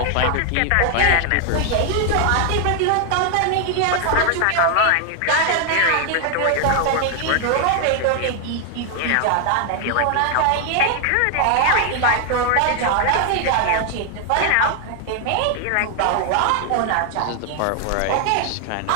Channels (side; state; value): both; different; correlation 0.00